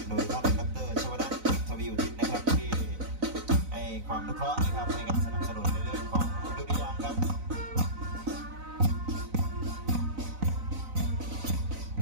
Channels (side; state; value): left; late; 4.0 ms